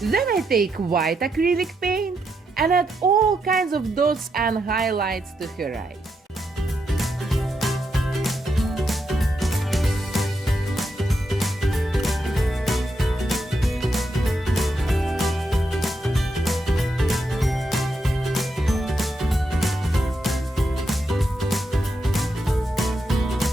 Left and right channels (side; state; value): both; normal; correlation 0.82